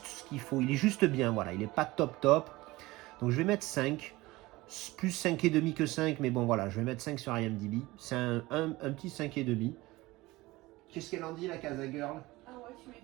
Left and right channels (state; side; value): quieter; left; 19.9 dB